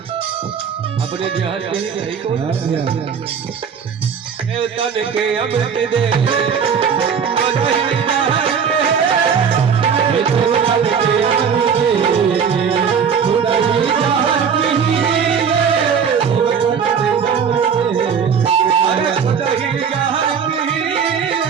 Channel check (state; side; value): quieter; left; 6.8 dB